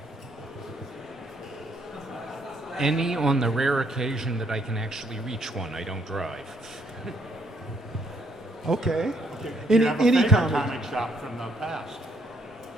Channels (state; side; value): normal; both; correlation 0.70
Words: Any on the rare occasion that I can actually reach one. I don't drive. Okay. Do you have a Any favorite comic shop from the past?